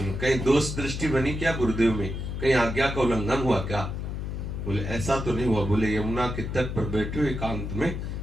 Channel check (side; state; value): left; noise; hum, 5 dB below the sound